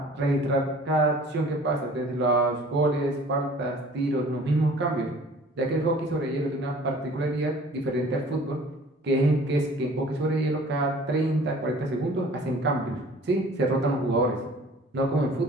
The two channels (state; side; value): normal; both; correlation 0.49